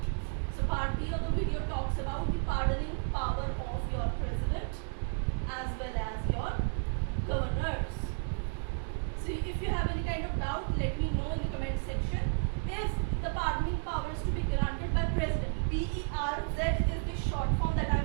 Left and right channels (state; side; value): silent; left; 56 dB below the other